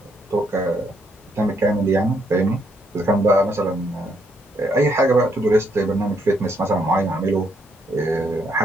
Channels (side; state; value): both; normal; correlation 0.73